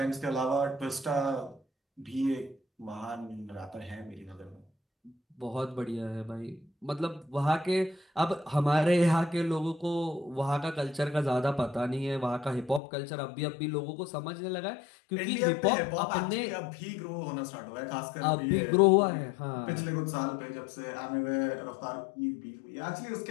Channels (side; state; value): right; drops out; at 12.8 s